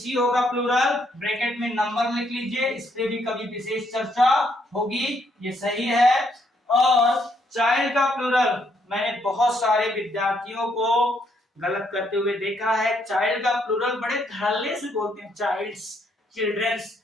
होगा प्लूरल, ब्रैकेट में नंबर लिख लीजिए, इस पे भी कभी विशेष चर्चा होगी, ये सही है। और चाइल्ड का प्लूरल मैंने बहुत सारे विद्यार्थियों को गलत करते हुए देखा है। चाइल्ड का प्लूरल बड़े धड़ल्ले से बोलते हैं, चाइल्ड्स, चिल्ड्रंस।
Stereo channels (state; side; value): normal; both; correlation 0.72